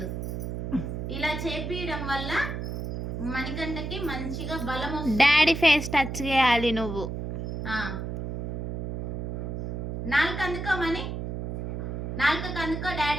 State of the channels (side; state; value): right; noise; hum, 4 dB below the sound